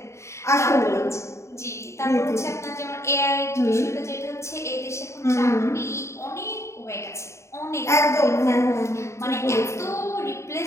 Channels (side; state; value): right; late; 0.14 ms